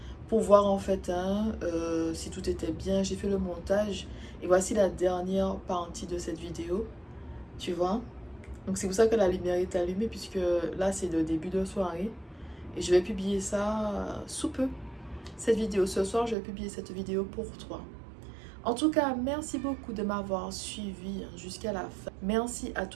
pour voir en fait si tout était bien. J'ai fait le montage et voici la dernière partie de cette vidéo, tu vois. Donc c'est pour ça que la lumière est allumée puisque là c'est le début de soirée et je vais publier ça sous peu. Cette vidéo ce soir, je vais publier cette vidéo pour toi. En tout cas, merci beaucoup de m'avoir suivi jusqu'à la fin. Merci à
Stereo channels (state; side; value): drops out; left; at 16.4 s